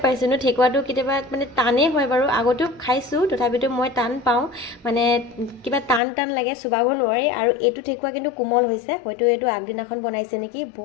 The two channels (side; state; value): right; drops out; at 6.0 s